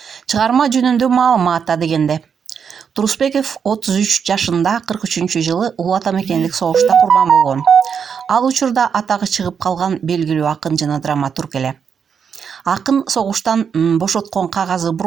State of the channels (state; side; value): quieter; left; 6.9 dB